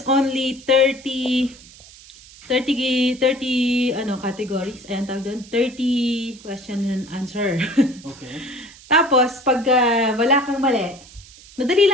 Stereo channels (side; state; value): right; noise; hiss, 21 dB below the sound